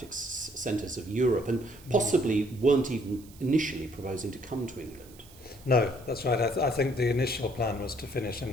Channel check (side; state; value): right; noise; hiss, 23 dB below the sound